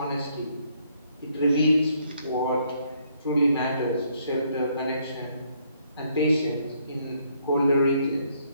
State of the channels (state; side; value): inverted; both; correlation -0.70